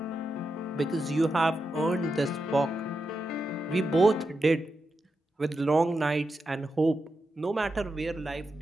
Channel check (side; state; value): both; normal; correlation 0.88